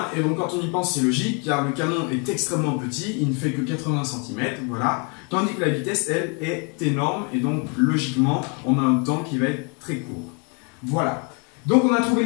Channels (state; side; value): quieter; right; 35.3 dB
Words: et donc quand on y pense, c'est logique, car le canon est extrêmement petit, il ne fait que 80 cm, voilà. Tandis que la vitesse, elle, est énorme, et donc logiquement, on a un temps qui va être très court. Voilà. Donc on a trouvé